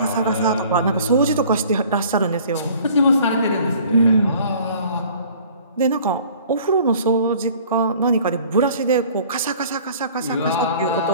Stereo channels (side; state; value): both; inverted; correlation -0.51